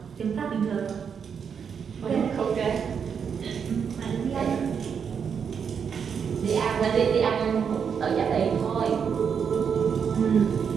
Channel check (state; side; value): quieter; left; 6.9 dB